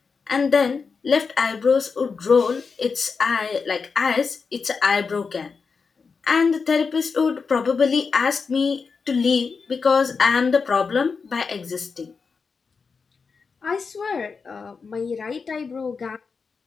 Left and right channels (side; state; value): right; quieter; 5.1 dB